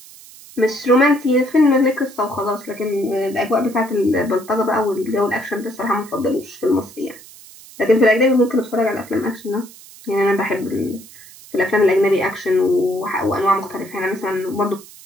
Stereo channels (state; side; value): noise; right; hiss, 20 dB below the sound